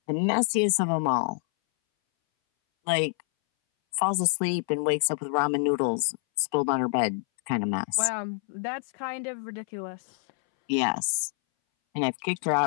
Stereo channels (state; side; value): silent; right; 60 dB below the other